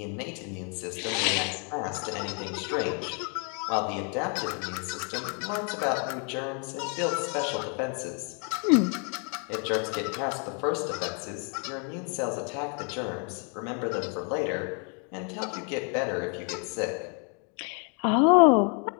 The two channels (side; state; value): right; quieter; 39.3 dB